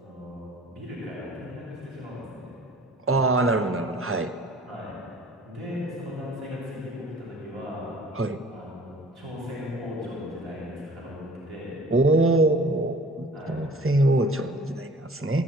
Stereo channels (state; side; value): normal; both; correlation 0.49